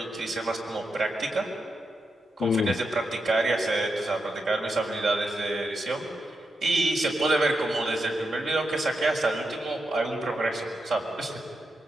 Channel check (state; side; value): normal; both; correlation 0.86